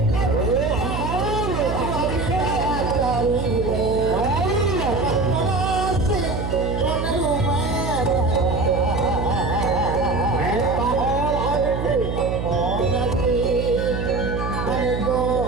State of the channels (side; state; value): right; noise; hum, 3 dB below the sound